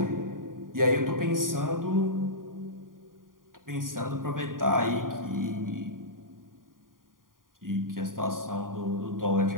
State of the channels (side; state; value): left; late; 0.90 ms